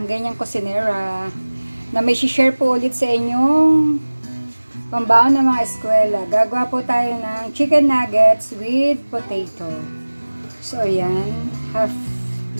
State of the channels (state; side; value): inverted; both; correlation -1.00